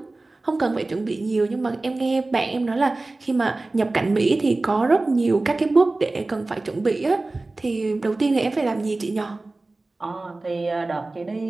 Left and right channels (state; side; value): quieter; left; 3.1 dB